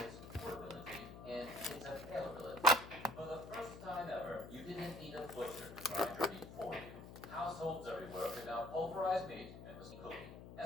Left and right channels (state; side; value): noise; left; hum, 13 dB below the sound